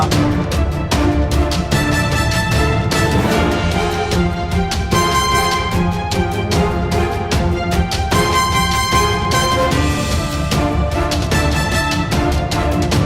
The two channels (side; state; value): both; identical; correlation 1.00